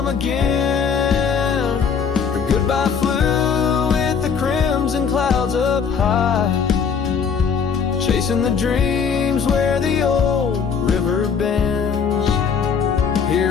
again. Her goodbye flew with the crimson clouds up high, chasing the dreams where the old river bends.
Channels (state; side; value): quieter; right; 6.5 dB